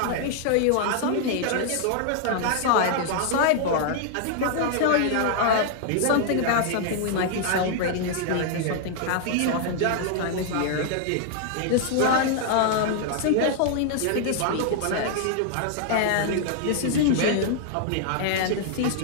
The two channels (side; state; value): both; different; correlation -0.01